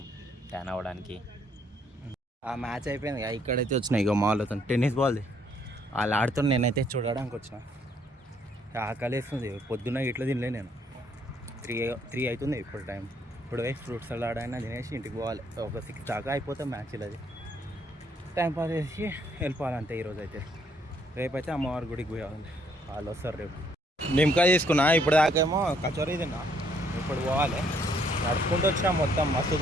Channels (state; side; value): normal; both; correlation 0.68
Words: ట్యాన్ అవ్వడానికి. ఆ మ్యాచ్ అయిపోయింది. ఇక్కడైతే వచ్చినాయి ఇక మాల్ అవుతాను టెన్నిస్ బాల్ది. వాళ్ళు ఆడుతున్నా, నేనైతే చూడడానికి వచ్చిన. ఆకలి వేస్తుంది. పొద్దున్న ఇట్లా తినలే నేను. 3 అవుతుంది ఇప్పుడు టైం. ఇప్పుడు వేసి ఫ్రూట్స్ సలాడ్ అయినా తినేసి ఇంటికి పోవాలి. ఒక 6 దాకా అయిపోతే మ్యాచ్. అది టైం పాస్ చేసి వెళ్ళిపోవాలంతే. ఈరోజు అయితే రేపైతే అమ్మవారి గుడికి పోవాలి. వాళ్ళు వస్తారు రేపు. నిమ్మకాయ తీసుకున్నా. ఇప్పుడు దాకేమో కచోరీ తిన్నా. ఇప్పుడు పోవాలి. నడుచుకుంటూ వచ్చినా మొత్తం మస్తు